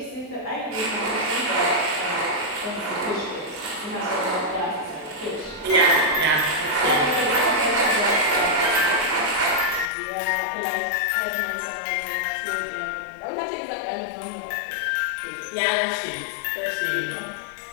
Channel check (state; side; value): drops out; right; at 9.9 s